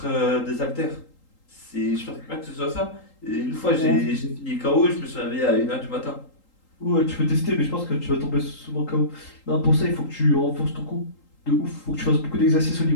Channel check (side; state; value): right; late; 3.8 ms